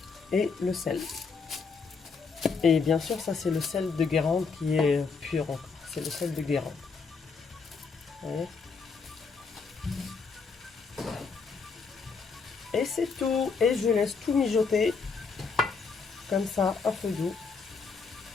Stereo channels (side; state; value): right; quieter; 4.9 dB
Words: Et le sel. Et bien sûr, ça c'est le sel de Guérande qui est pur encore. C'est le sel de Guérande. Vous voyez ? Et c'est tout. Et je laisse tout mijoter comme ça à feu doux.